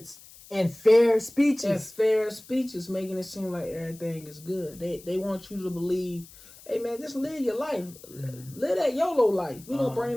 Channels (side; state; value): left; noise; hiss, 21 dB below the sound